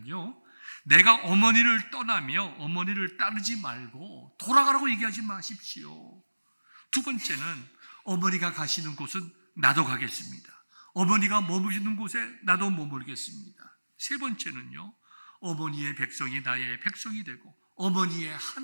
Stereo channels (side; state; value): both; inverted; correlation -1.00